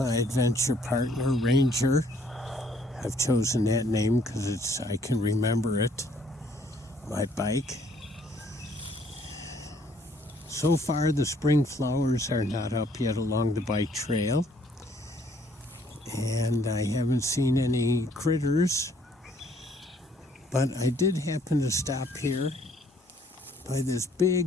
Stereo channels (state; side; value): normal; both; correlation 0.63